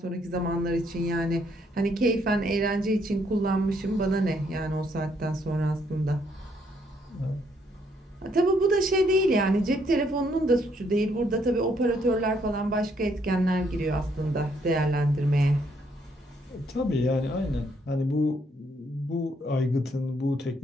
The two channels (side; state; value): both; normal; correlation 0.71